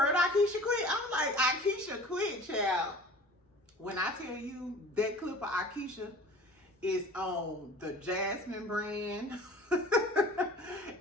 Aikisha quit? I'm like, Aikisha quit, child. When I tell you that clip of Aikisha is on the Jasmine brand.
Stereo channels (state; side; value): normal; both; correlation 0.44